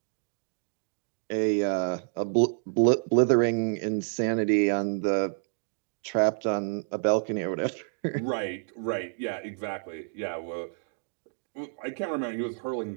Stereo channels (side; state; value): left; silent; digital silence